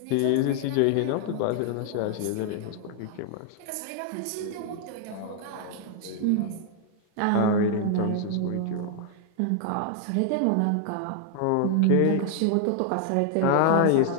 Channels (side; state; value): both; different; correlation 0.00